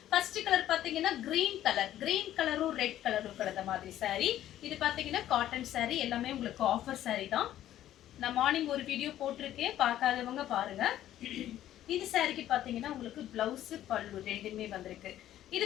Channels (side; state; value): right; quieter; 12.5 dB